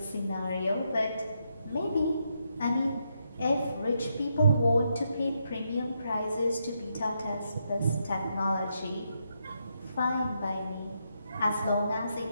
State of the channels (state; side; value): inverted; both; correlation -0.80